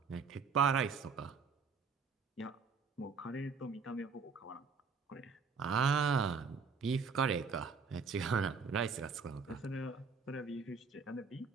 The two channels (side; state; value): left; quieter; 5.2 dB